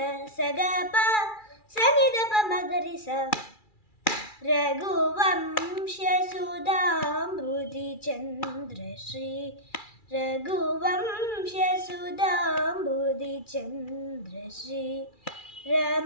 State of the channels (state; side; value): late; right; 2.3 ms